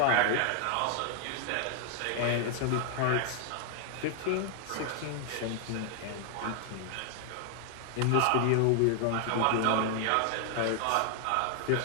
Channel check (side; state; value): both; different; correlation 0.00